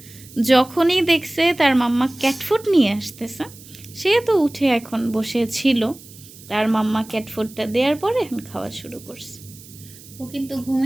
যখনই দেখছে তার মাম্মা ক্যাট ফুড নিয়ে আসতেছে, সে তো উঠে এখন বসে ছিল। তার মাম্মা ক্যাট ফুডটা দেওয়ার পরে এখন খাওয়া শুরু করছে। ও কিন্তু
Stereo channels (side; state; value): right; noise; hiss, 20 dB below the sound